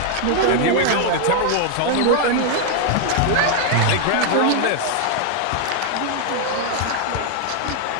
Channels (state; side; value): different; both; correlation 0.00